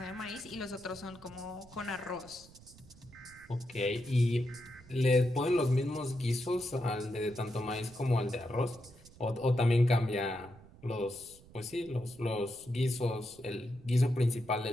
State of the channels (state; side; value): noise; right; rumble, 22 dB below the sound